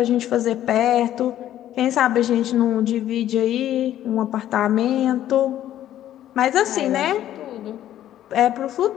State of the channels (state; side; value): quieter; right; 12.1 dB